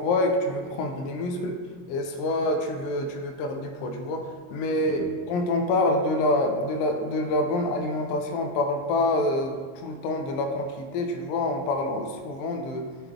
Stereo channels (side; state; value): right; late; 23 ms